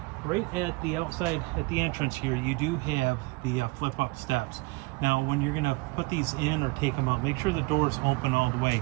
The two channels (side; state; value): left; quieter; 25.4 dB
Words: Right at the outside, at the entrance here, you do have the flip-up steps. Now, when you're going to put these in or take them out, make sure the door's open all the way.